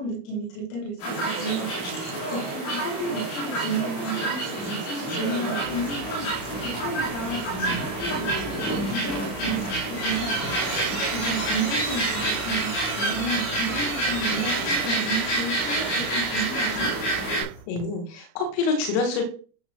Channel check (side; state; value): right; late; 35 ms